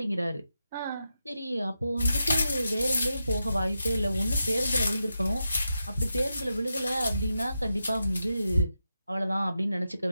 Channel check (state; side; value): inverted; both; correlation -0.87